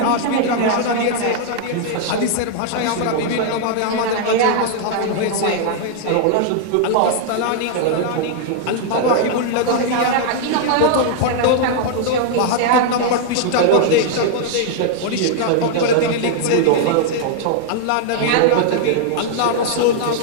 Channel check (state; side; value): different; both; correlation 0.00